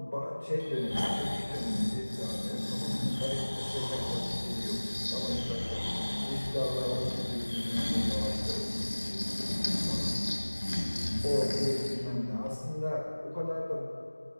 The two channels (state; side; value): inverted; both; correlation -1.00